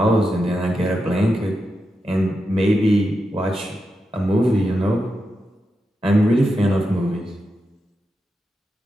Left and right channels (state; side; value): normal; both; correlation 0.88